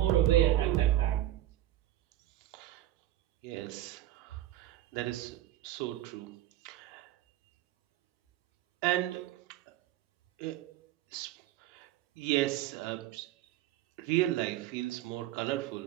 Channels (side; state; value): left; quieter; 13.9 dB